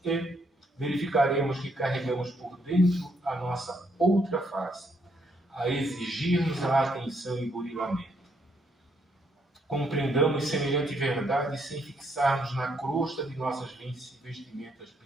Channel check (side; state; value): both; normal; correlation 0.73